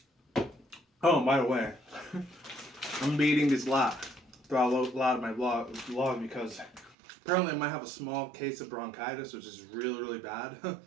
Oh, and by the way, I'm be eating this lot throughout a lot of my vlog because apparently I might have a small case of bronchitis, which is really, really bad.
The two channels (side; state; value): left; drops out; at 7.0 s